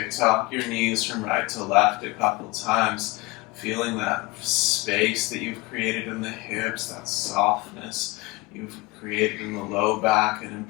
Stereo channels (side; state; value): right; quieter; 22.2 dB